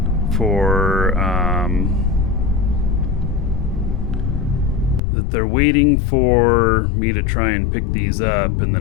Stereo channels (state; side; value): drops out; right; at 5.0 s